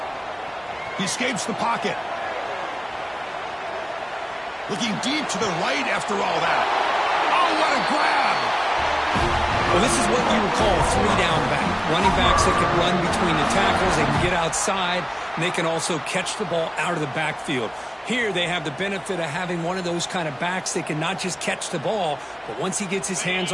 He escapes the pocket. Looking deep to the right after all that. Oh, what a grab! Well, this is what you would call a 3-down back. Running backs that can run between the tackles, they can get outside, and they can also catch the ball out of the backfield. Here they have the benefit of having one of those kind of backs that can not just catch the ball, but once he gets his hands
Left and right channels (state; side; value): identical; both; correlation 1.00